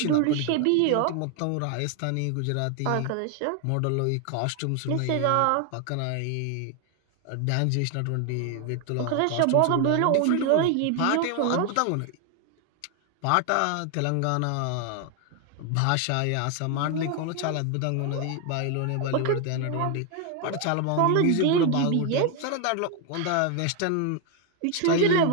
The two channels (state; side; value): different; both; correlation 0.01